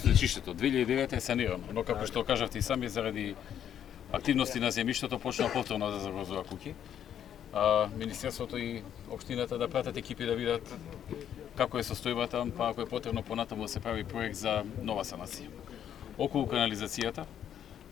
2009 е санирано, но како што кажавте и сами, заради активности на земјиштето почна повторно да загрозува куќи. Министерството и општината да пратат екипи да видат како е состојбата, па ако е потребно понатаму да се прави проект за нова санација. Околу канализацијата,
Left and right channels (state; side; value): quieter; right; 9.7 dB